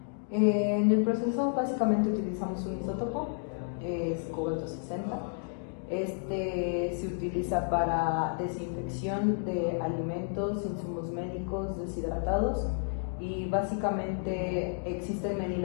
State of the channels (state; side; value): silent; right; digital silence